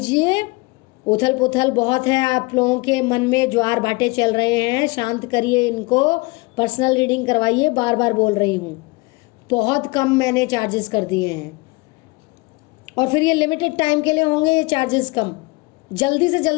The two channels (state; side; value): quieter; right; 25.2 dB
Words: उथल पुथल बहुत है आप लोगों के मन में, ज्वार भाटे चल रहे हैं, शांत करिए इनको, पर्सनल रीडिंग करवाइए। बार बार बोल रही हूँ, बहुत कम मैंने चार्जेस कर दिए हैं, और फिर ये लिमिटेड टाइम के लिए होंगे ये चार्जेस कम। जल्दी से